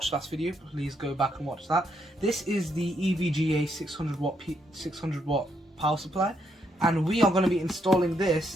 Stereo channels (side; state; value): both; normal; correlation 0.76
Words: last video, please go back and watch that. This is the EVGA 600 watt power supply, and we are going to be installing